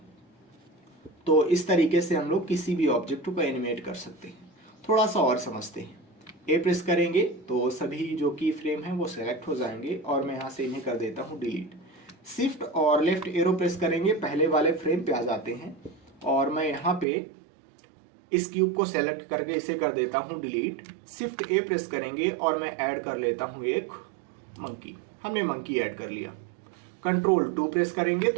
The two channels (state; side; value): drops out; left; at 17.1 s